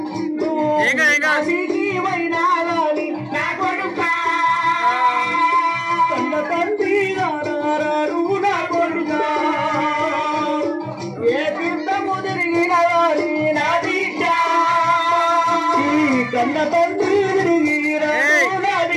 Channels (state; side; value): identical; both; correlation 1.00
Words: కాశీకి పోయినా గాని నా కొడుక కన్న తండ్రి నారాడు నా కొడుక ఏ తీర్థము తిరిగిన గాని నా బిడ్డ కన్న తండ్రి తిరిగిన నా